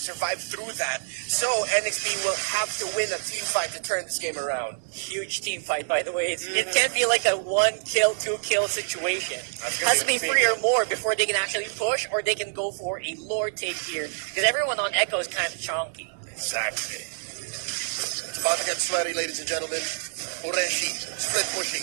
through that. So NXT will have to win a team fight to turn this game around. Huge team fight, by the way. It can't be like a 1-kill, 2-kill situation. It has to be 3 or more before they can actually push, or they can go for a lord take here. Because everyone on Echo is kind of chonky. Exactly. It's about to get sweaty, ladies and gentlemen. Ureshi, split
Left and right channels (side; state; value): left; silent; digital silence